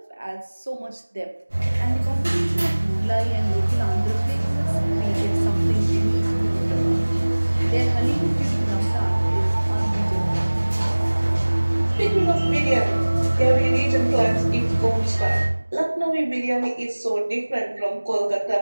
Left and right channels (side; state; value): both; inverted; correlation -1.00